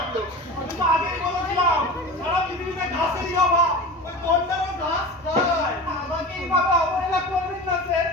আমি তো আগেই বলেছিলাম সারা পৃথিবীতে ঘাসেরই অভাব, ওই গন্ডারও ঘাস খায়। আমাকে এইভাবে অবহেলা করবেন না স্যার,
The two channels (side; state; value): both; normal; correlation 0.32